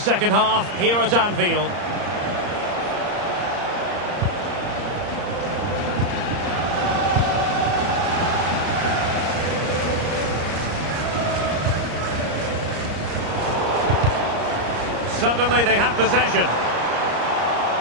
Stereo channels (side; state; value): left; late; 34 ms